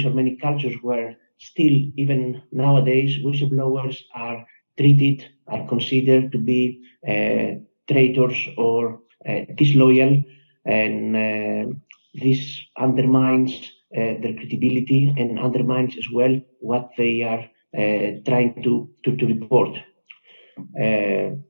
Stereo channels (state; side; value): inverted; both; correlation -1.00